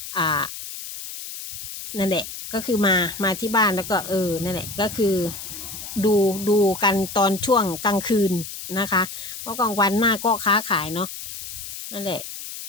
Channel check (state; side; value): noise; left; hiss, 10 dB below the sound